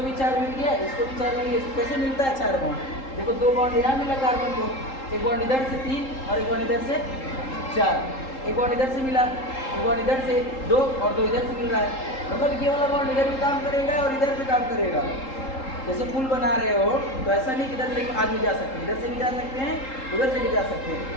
भी 4 मिल गया, इसको भी 4 मिल गया, इसको कैसे मिलता है 4 बॉन्ड? देखो 2 बॉन्ड यहाँ मिला कार्बन को, एक बॉन्ड इधर से 3 और एक बॉन्ड इधर से 4, एक बॉन्ड इधर से मिला, एक बॉन्ड इधर से 2 और 2 इधर से मिल रहा है, मतलब ये वाला बॉन्ड इधर भी काम करेगा और इधर भी काम करेगा। जैसे पुल बना रहे हो तो ऐसा नहीं कि इधर से आदमी जा सकते हैं, इधर से भी जा सकते हैं, उधर से भी जा सकते हैं,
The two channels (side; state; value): right; late; 3.8 ms